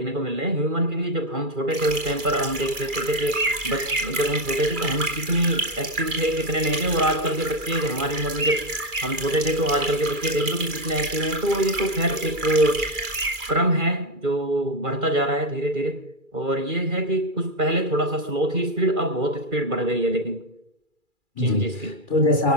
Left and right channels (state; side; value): late; left; 2.3 ms